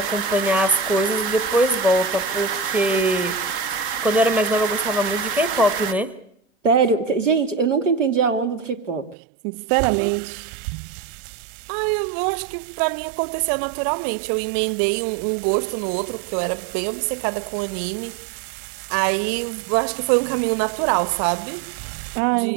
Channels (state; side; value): drops out; left; at 9.2 s